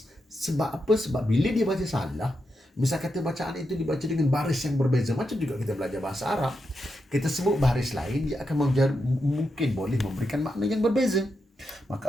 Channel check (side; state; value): both; normal; correlation 0.85